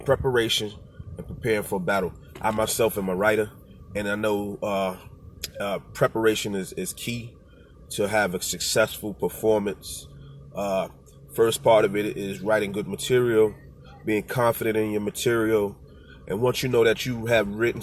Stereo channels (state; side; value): identical; both; correlation 1.00